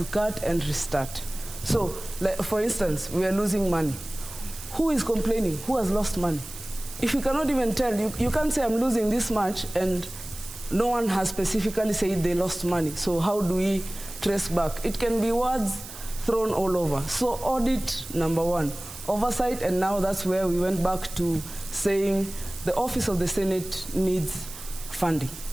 cut and restart. So, like, for instance, we are losing money. Who is complaining? Who has lost money? If you cannot even tell, you can't say I'm losing this much and no one has specifically said they lost money. So how do we trace back? It can be words thrown all over. So audit, number one. Oversight, and now that's where we went back to saying the Office of the Senate needs funding.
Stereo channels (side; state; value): right; noise; hiss, 13 dB below the sound